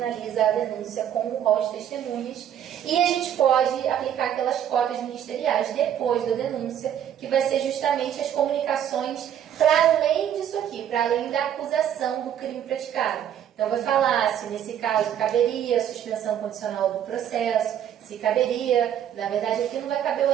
a denúncia com o rol de testemunhas e a gente pode aplicar aquelas cópias ministeriais depois da denúncia, que vai ser justamente as comunicações para além disso aqui, para além da acusação do crime praticado. Então, vai falar se nesse caso caberia a suspensão condicional do processo, se caberia, na verdade aqui não vai caber o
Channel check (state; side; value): quieter; left; 9.9 dB